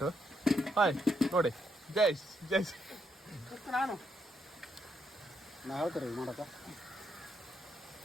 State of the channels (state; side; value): normal; both; correlation 0.77